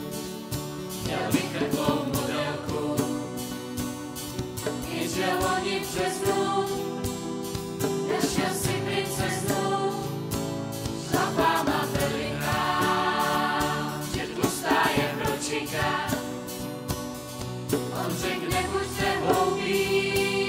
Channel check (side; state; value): both; identical; correlation 1.00